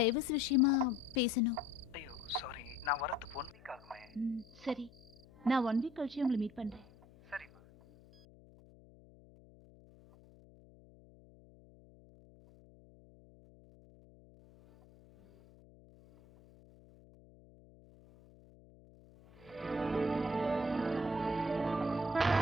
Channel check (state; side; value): noise; left; hum, 24 dB below the sound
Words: விஷயமா பேசணும். ஐயோ சாரி, நான் வரதுக்கு 1 வீக் ஆகுமே. சரி, நான் 1 வீக் கழிச்சு உங்களை மீட் பண்றேன். சரிம்மா.